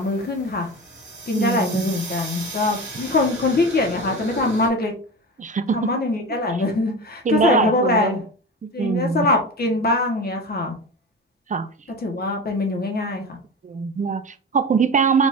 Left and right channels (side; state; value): both; normal; correlation 0.28